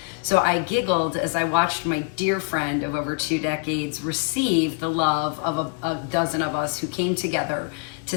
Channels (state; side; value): quieter; right; 39.0 dB